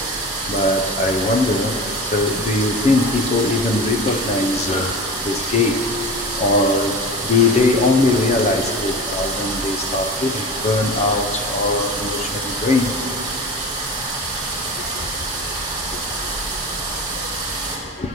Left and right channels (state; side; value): normal; both; correlation 0.31